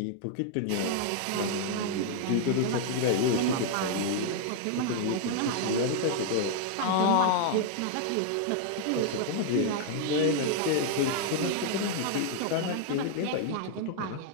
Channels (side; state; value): both; different; correlation 0.00